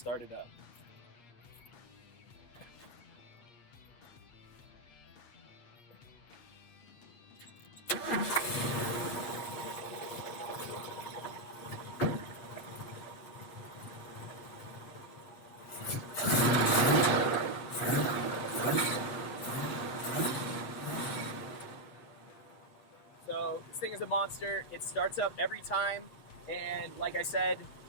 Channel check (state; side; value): late; right; 8.7 ms